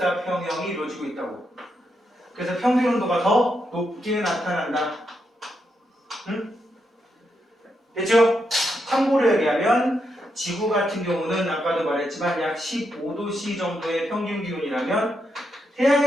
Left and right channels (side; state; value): both; normal; correlation 0.82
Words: 이루어지고 있다고. 그래서 평균 온도가 더 높게 나타난다. 응? 됐죠? 참고로 얘기하면 지구 같은 경우는 아까도 말했지만 약 15도C 정도의 평균 기온이라면